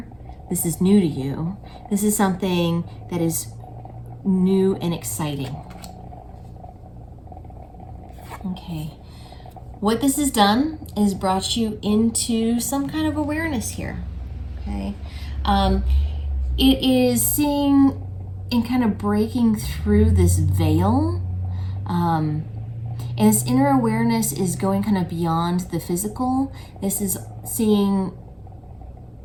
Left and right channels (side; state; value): both; identical; correlation 1.00